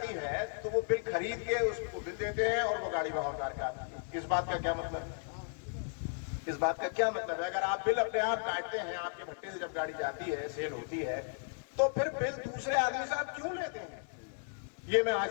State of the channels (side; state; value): right; silent; 54 dB below the other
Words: है तो वो बिल खरीद के उसको बिल देते हैं और वो गाड़ी वहां उतार के आती है। इस बात का क्या मतलब है? इस बात का क्या मतलब है? अगर आप बिल अपने आप काटते हैं, आपके भट्टे से जब गाड़ी जाती है, सेल होती है, तो फिर बिल दूसरे आदमी से आप क्यों लेते हैं? ये मैं आज